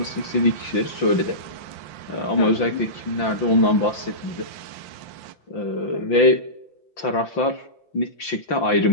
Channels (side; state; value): right; late; 5.9 ms